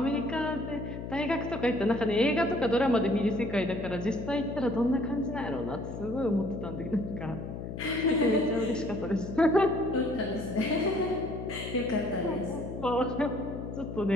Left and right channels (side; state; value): left; noise; hum, 8 dB below the sound